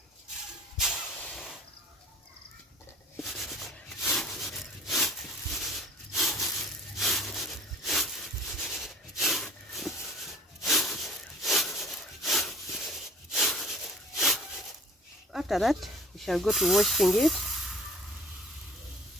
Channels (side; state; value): both; normal; correlation 0.48